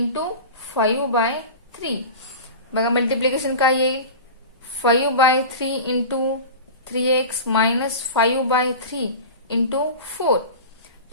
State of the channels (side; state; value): both; inverted; correlation -0.31